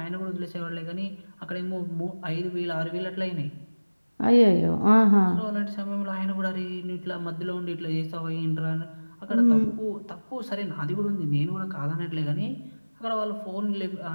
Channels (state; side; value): inverted; both; correlation -1.00